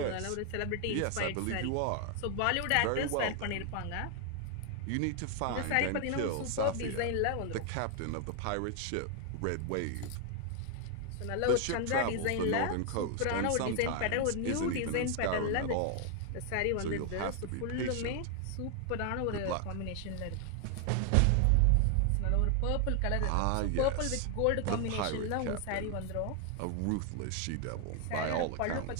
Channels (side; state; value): both; different; correlation 0.00